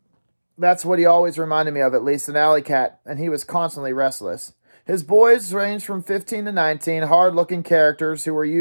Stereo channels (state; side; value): inverted; both; correlation -1.00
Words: That's what he always reminded me of, at least, an alley cat, and he was constantly restless. His boys ranged from 15 to 19, hard-looking characters who were